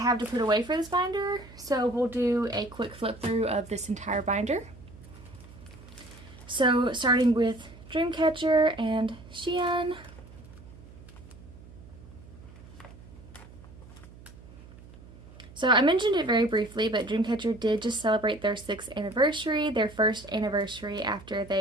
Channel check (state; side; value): noise; right; hum, 19 dB below the sound